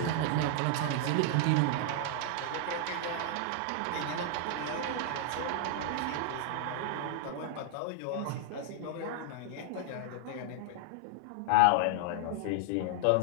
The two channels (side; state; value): both; different; correlation 0.00